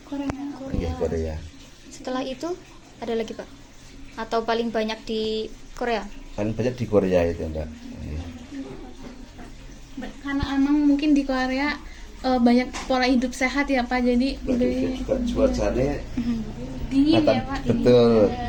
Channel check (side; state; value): both; identical; correlation 1.00